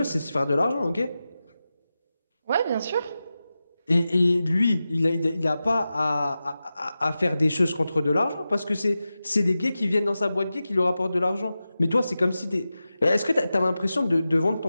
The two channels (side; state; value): both; inverted; correlation -0.93